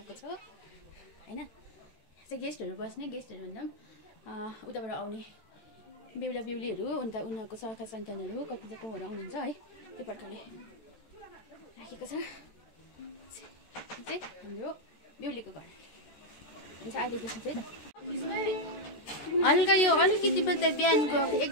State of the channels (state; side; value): late; right; 13 ms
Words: छ होइन। चाहिँ गेस्टहरू बस्ने, गेस्टहरू भन्दा पनि उताबाट आउने बेहुला बेहुलीहरू, अन्त उनीहरूको सखा सन्तानहरू कति कोहरू आउनुहुन्छ है। त्यो प्रकारले राखेको छ। चाहिँ हाम्रो बेहुलीको घर हुन्छ अहिलेदेखि चाहिँ त। हल्का यो अलिकति मात्रै बिहानको एक